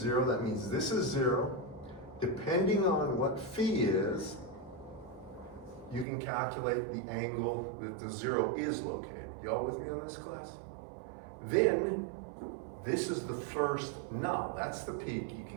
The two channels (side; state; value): left; drops out; at 6.1 s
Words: That means this is 0. Depending on what phi is, you can calculate the angle that the 0 is located. Y'all with me on this, class? Then, this is the first null. That's the peak you